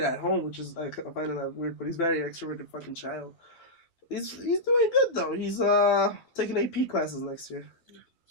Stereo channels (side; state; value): right; late; 12 ms